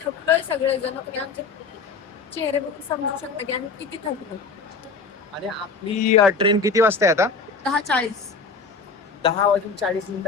थकलोय सगळेजण. तुम्ही आमचे चेहरे बघून समजू शकता की आम्ही किती थकलो. आणि आपली ट्रेन किती वाजता आहे आता? 10:40.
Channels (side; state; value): right; quieter; 4.6 dB